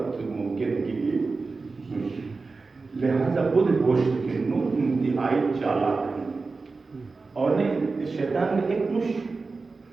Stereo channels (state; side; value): quieter; left; 4.0 dB